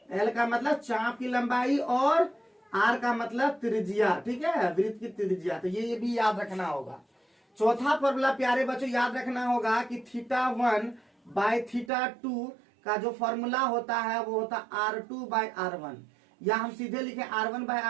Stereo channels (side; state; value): left; drops out; at 11.9 s